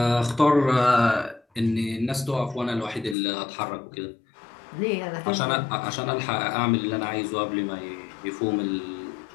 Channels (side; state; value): right; drops out; at 3.2 s